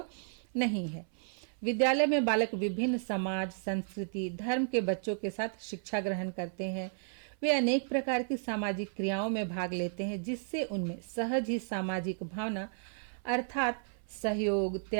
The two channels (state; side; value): silent; left; 56 dB below the other